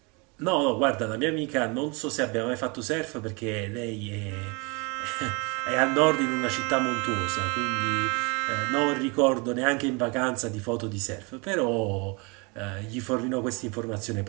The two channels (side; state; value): left; quieter; 29.9 dB